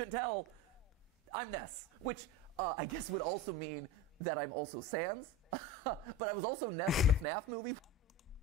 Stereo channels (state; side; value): normal; both; correlation 0.28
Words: tell, I'm Ness, which I guess would also mean that I'm also Sans. But I was also Ness in the FNAF movie,